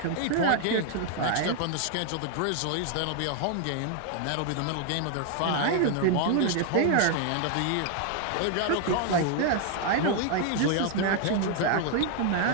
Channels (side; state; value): both; different; correlation 0.00